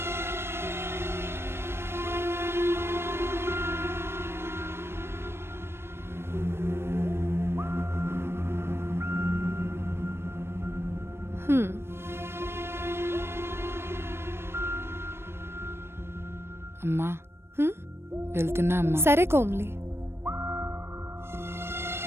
అమ్మా, వెళ్తున్నా అమ్మా. సరే కోమ్లి.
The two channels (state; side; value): late; left; 0.12 ms